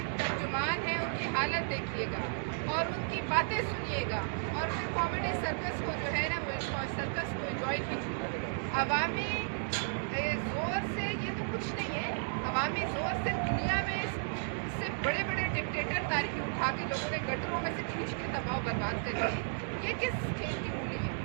ترجمان ہیں ان کی حالت دیکھیے گا اور ان کی باتیں سنیے گا، اور پھر کامیڈی سرکس کو جو ہے نا وہ سرکس کو انجوائے کیجیے۔ عوامی زور سے یہ تو کچھ نہیں ہے، عوامی زور سے دنیا میں اس سے بڑے بڑے ڈکٹیٹر تاریخی اٹھا کے لوگوں نے گٹروں میں سے کھینچ کے تباہ و برباد کر دی۔ یہ کس کھیل کی مولی ہے؟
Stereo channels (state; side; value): silent; left; digital silence